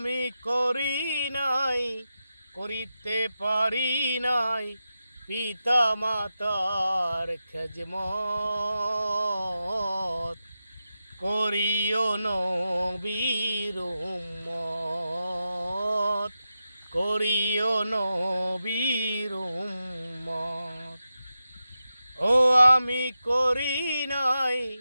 করি নাই, করিতে পারি নাই। পিতা মাতার খেজমত, করিও নবীর উম্মত, করিও নবীর উম্মত। ও আমি করি নাই,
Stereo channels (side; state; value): both; inverted; correlation -0.90